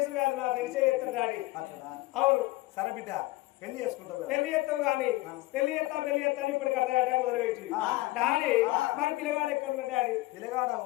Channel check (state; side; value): quieter; right; 19.7 dB